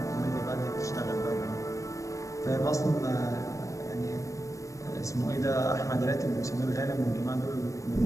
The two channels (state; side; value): late; right; 0.16 ms